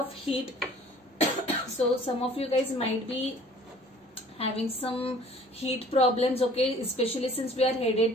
heat. So some of you guys might be having some heat problems, okay, especially since we are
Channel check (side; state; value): both; normal; correlation 0.52